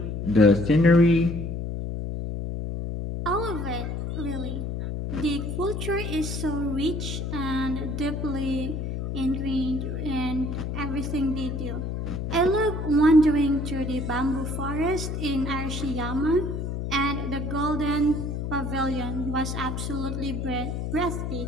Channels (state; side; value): noise; left; hum, 3 dB below the sound